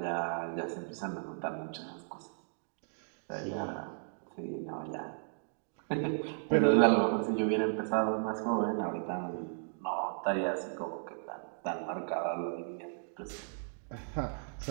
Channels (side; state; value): left; silent; digital silence